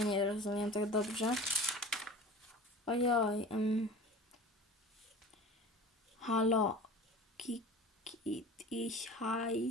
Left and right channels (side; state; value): both; normal; correlation 0.39